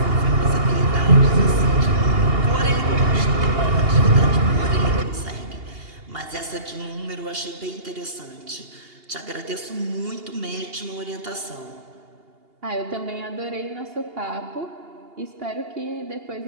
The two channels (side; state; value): left; late; 2.8 ms